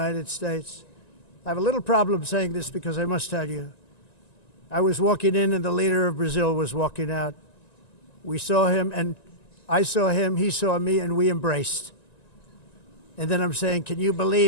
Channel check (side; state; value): right; late; 1.9 ms